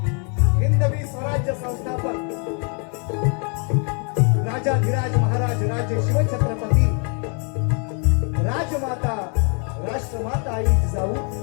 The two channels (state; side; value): quieter; right; 38.9 dB